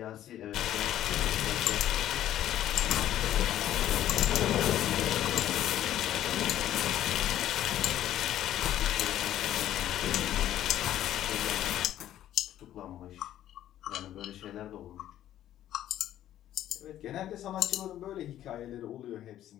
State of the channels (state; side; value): quieter; right; 12.3 dB